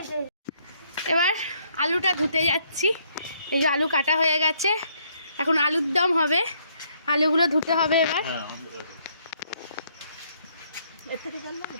এবার আলুটা ধুতে যাচ্ছি, এই যে আলু কাটা হয়ে গেছে, এখন আলুর দম হবে, আলুগুলো ধুতে হবে এবার।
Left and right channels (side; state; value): both; inverted; correlation -0.69